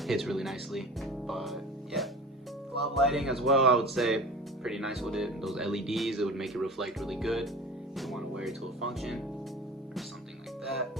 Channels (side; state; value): both; normal; correlation 0.37